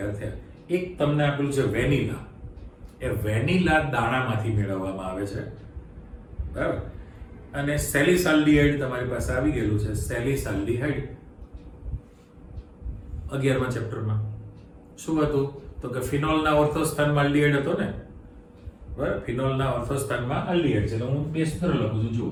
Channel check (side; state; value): both; identical; correlation 1.00